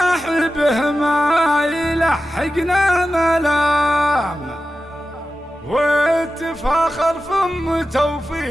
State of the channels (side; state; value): both; normal; correlation 0.93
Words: ما يلحقنا ملام، واتفاخر فم